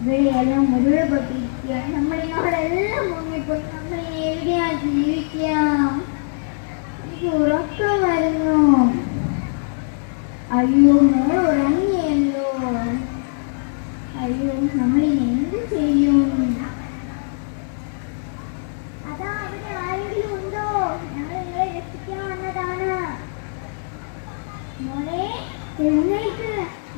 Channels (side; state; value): right; silent; 62 dB below the other